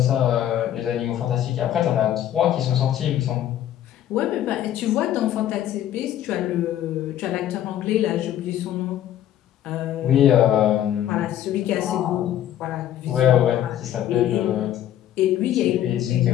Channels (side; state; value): right; quieter; 11.5 dB